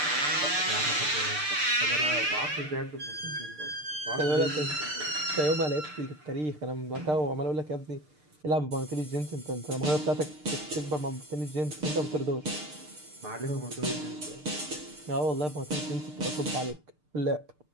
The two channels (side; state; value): left; late; 6.7 ms